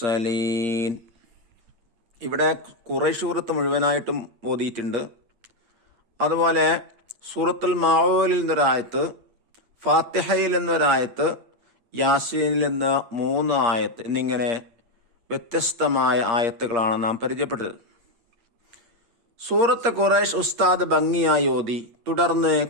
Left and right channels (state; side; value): late; left; 8.6 ms